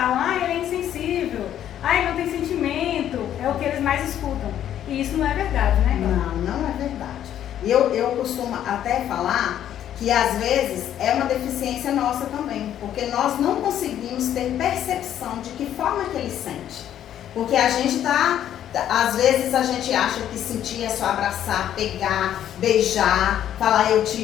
ele é insensível, ele não tem sentimento, é o que eles mais escutam. E isso não é verdade, né? Não é verdade. Eu costumo até falar que às vezes é uma deficiência nossa também, porque nós não conseguimos ter percepção de que forma que ele sente. Porque a gente às vezes a gente acha que sentir é só abraçar, pegar, beijar, falar eu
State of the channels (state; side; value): quieter; right; 10.8 dB